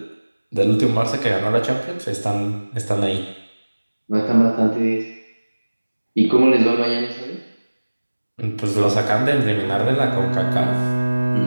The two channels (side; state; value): both; inverted; correlation -1.00